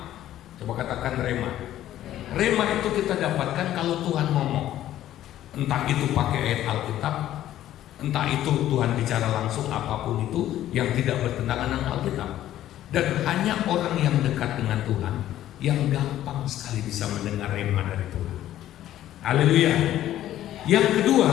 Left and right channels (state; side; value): quieter; right; 12.9 dB